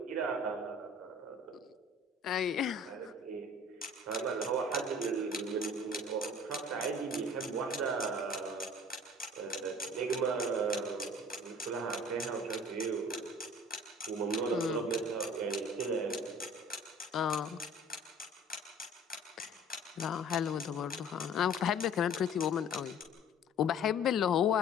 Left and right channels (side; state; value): both; normal; correlation 0.48